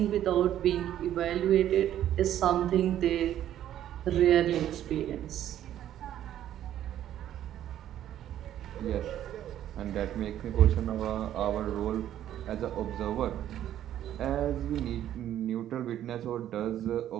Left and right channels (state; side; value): quieter; left; 11.6 dB